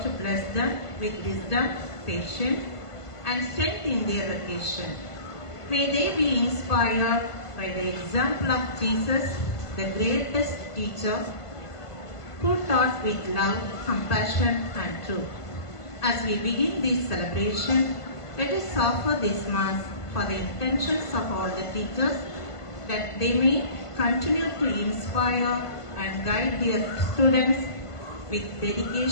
to bless them with wisdom, patience, and strength in their vocation. May they be inspired by the example of Jesus, the greatest teacher, who taught with love, compassion, and truth. As we begin this celebration, let us offer this Mass for the intentions of all the teachers, that they may continue to inspire and guide their students with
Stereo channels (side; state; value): right; late; 1.5 ms